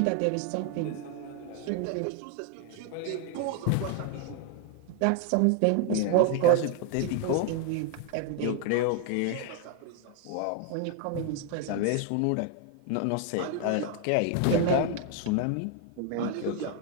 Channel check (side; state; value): both; different; correlation 0.01